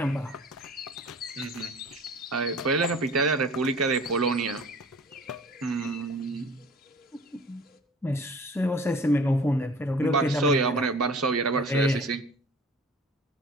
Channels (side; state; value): both; normal; correlation 0.45